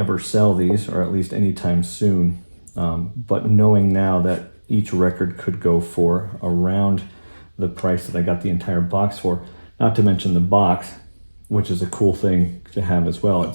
sell these, or at least anytime soon, but knowing now that each record could go for around the price that I got the entire box for, not to mention the box, which is a cool thing to have as well.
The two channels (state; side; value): inverted; both; correlation -1.00